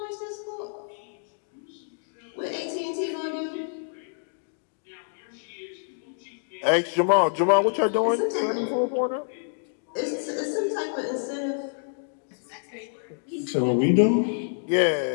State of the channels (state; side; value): silent; right; digital silence